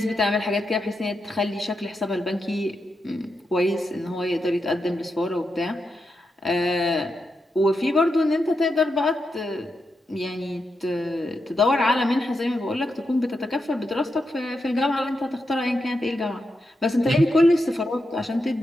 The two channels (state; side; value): normal; both; correlation 0.86